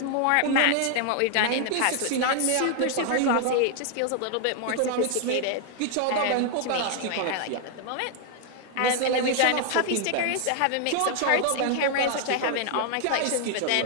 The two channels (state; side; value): different; both; correlation 0.00